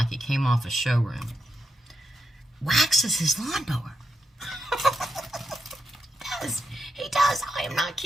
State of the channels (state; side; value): normal; both; correlation 0.86